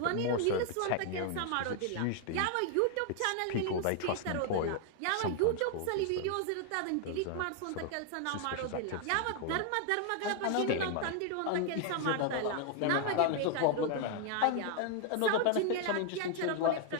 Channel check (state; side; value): different; both; correlation 0.00